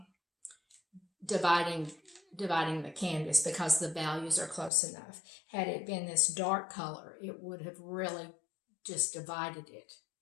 dividing the canvas because the values are close enough. Had it been this dark color, it would have really just divided it.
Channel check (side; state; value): right; drops out; at 4.7 s